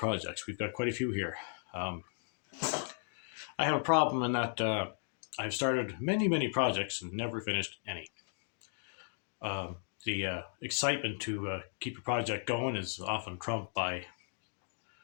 We've got quite a few here. I have a problem in that I've started many projects and never finished any. The excitement to keep a project going is often trumped by,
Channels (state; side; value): silent; right; 54 dB below the other